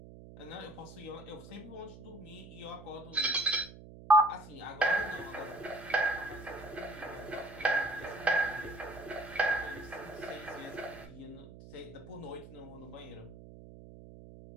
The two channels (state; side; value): noise; right; hum, 16 dB below the sound